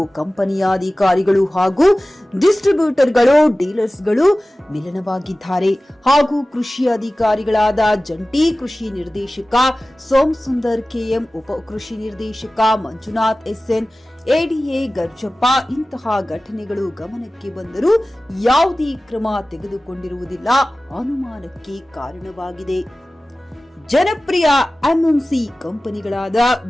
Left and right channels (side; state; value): both; normal; correlation 0.97